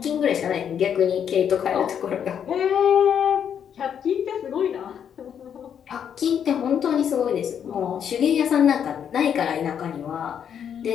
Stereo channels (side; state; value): right; quieter; 8.4 dB